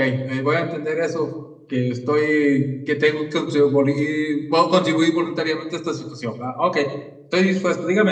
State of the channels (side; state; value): both; identical; correlation 1.00